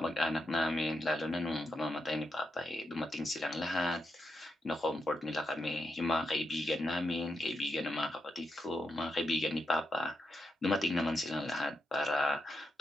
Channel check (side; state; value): both; normal; correlation 0.85